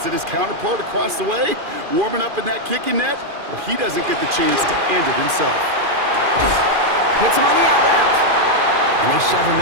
that his counterpart across the way, warming up in that kicking net, well, he doesn't get the chance to end it himself. Hits him on the out route. And they shove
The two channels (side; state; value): left; late; 2.4 ms